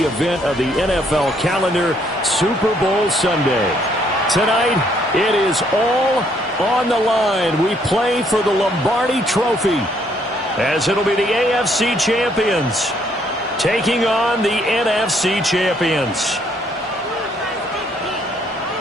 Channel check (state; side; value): normal; both; correlation 0.68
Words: event of the NFL calendar, Super Bowl Sunday. Tonight, it is all on the line. We play for the Lombardi Trophy, as it'll be the AFC champions taking on the NFC champions.